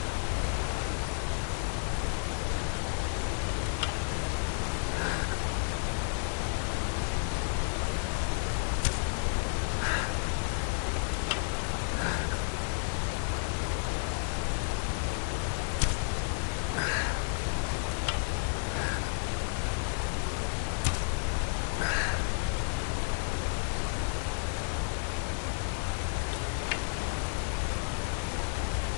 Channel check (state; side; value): silent; right; 57 dB below the other